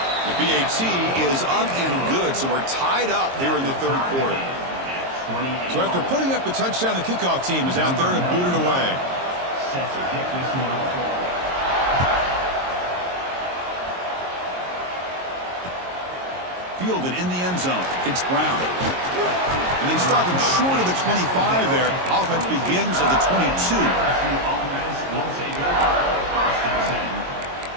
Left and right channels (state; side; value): late; left; 22 ms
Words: The BAT is up and good, so we're tied up here in the third quarter. So after putting up the touchdown, the kickoff team is out there to boot it away. Fielded in the end zone. It's Brown. And they stop him short of the 25 there. Offense begins at the 22.